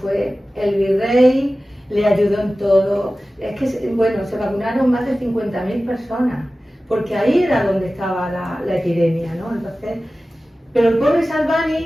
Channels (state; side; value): normal; both; correlation 0.96